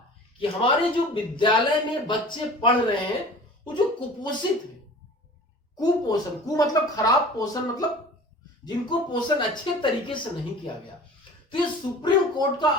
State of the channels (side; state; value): both; normal; correlation 0.42